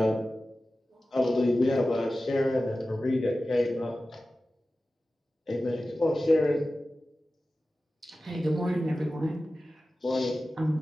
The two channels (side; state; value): both; normal; correlation 0.95